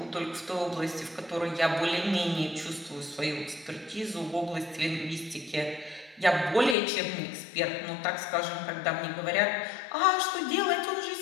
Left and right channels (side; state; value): right; drops out; at 6.8 s